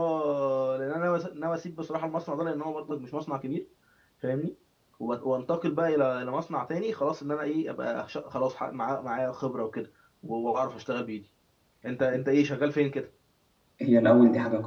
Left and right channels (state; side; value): identical; both; correlation 1.00